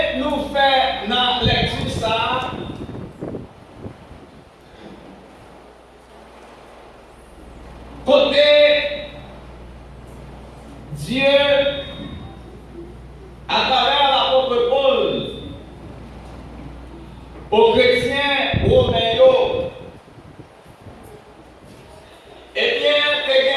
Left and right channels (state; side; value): identical; both; correlation 1.00